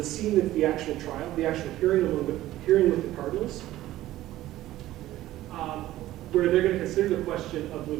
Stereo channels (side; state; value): left; quieter; 15.0 dB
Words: scene of the actual trial, the actual hearing with the cardinals. Where they're going to consider the question of